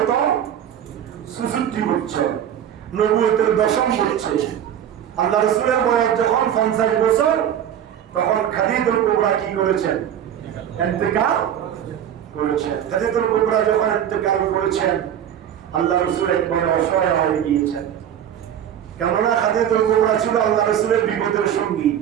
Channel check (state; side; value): quieter; left; 9.9 dB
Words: 66 বছর। নবুয়তের 10ম বছর। আল্লাহ রাসূলের বয়স যখন 50 বছর, তখন খাদিজাতুল কুবরা কি করেছেন? ইন্তেকাল করেছেন। খাদিজাতুল কুবরা যখন ইন্তেকাল করেছেন, আল্লাহ রাসূল একবারে অসহায় হয়ে গিয়েছেন। কেননা খাদিজাতুল কুবরা ছিল আল্লাহ রাসূলের বিপদের সঙ্গী।